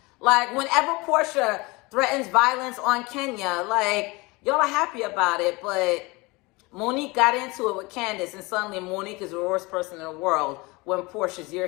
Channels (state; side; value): quieter; right; 24.5 dB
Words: Like, whenever Portia threatens violence on Kenya, like, y'all are happy about it, but Monique got into it with Candace, and suddenly Monique is the worst person in the world when Portia's your